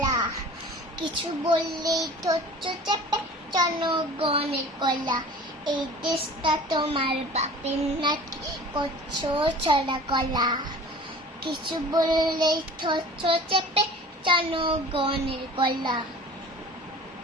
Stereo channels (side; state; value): both; normal; correlation 0.43